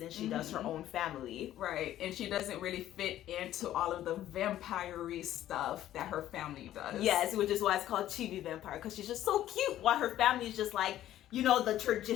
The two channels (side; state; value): right; quieter; 12.9 dB